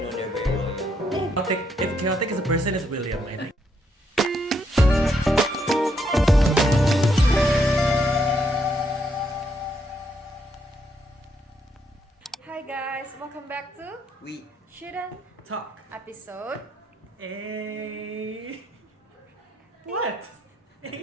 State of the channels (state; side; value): normal; both; correlation 0.75